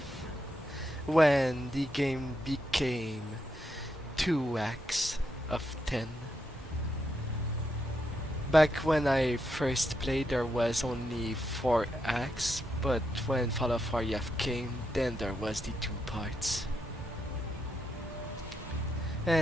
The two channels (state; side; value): normal; both; correlation 0.82